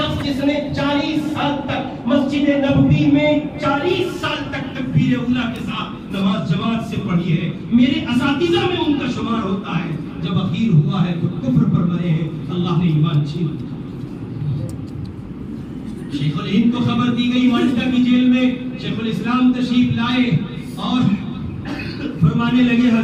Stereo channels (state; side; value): identical; both; correlation 1.00